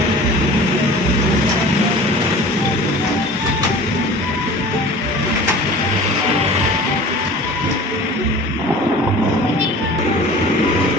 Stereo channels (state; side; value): normal; both; correlation 0.42